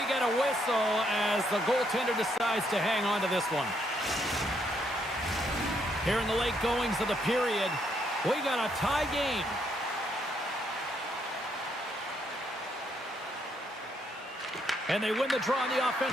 get a whistle as the goaltender decides to hang on to this one. Here in the late goings of the period, we got a tie game. And they win the draw in the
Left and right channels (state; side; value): normal; both; correlation 0.74